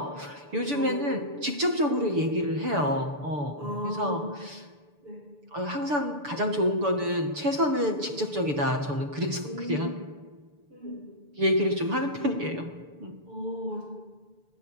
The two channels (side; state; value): left; late; 6.9 ms